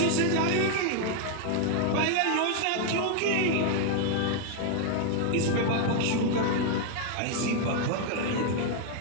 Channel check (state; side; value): different; both; correlation 0.00